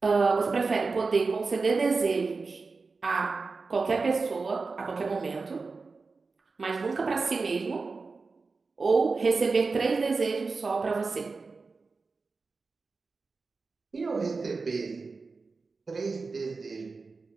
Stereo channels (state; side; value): quieter; left; 4.2 dB